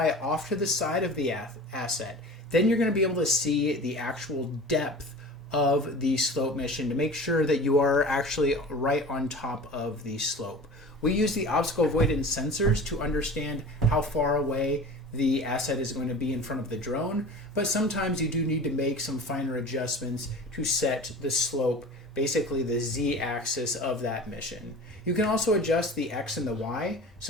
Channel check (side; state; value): both; normal; correlation 0.38